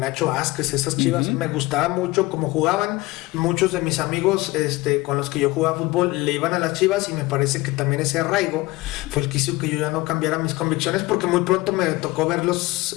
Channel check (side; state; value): right; quieter; 20.6 dB